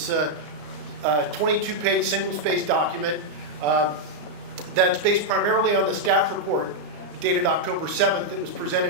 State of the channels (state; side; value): late; left; 34 ms